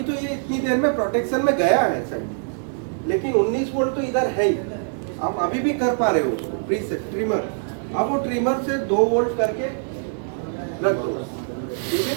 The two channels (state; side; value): silent; left; digital silence